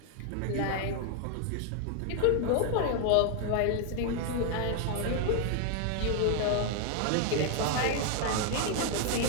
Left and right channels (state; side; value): different; both; correlation 0.00